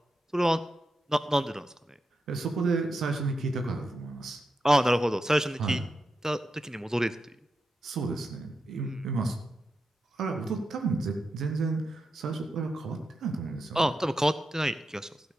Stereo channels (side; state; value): both; normal; correlation 0.87